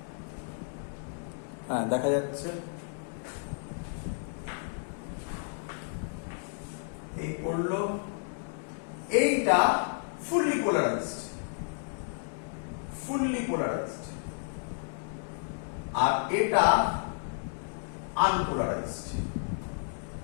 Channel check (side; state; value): right; silent; digital silence